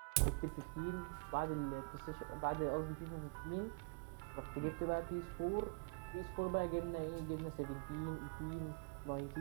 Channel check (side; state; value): left; quieter; 36.2 dB